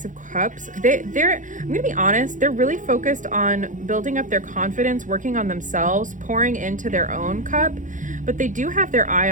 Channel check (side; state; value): left; late; 0.37 ms